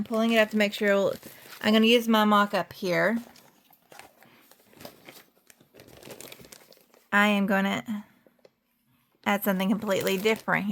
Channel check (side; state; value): both; identical; correlation 1.00